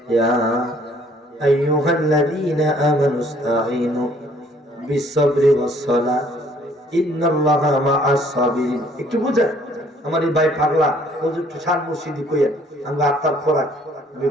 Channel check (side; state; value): both; normal; correlation 0.60